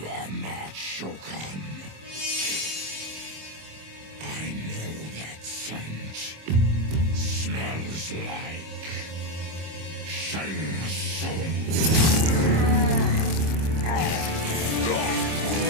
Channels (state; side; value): late; left; 26 ms